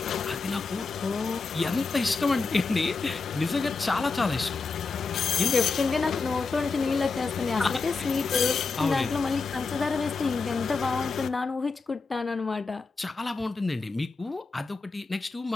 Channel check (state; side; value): quieter; right; 4.3 dB